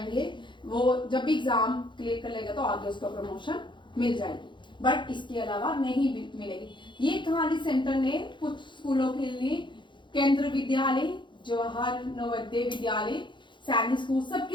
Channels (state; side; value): late; right; 0.23 ms